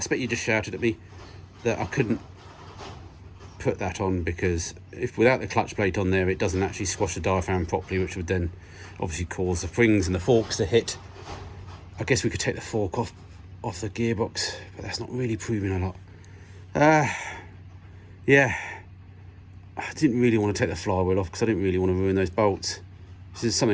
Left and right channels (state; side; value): identical; both; correlation 1.00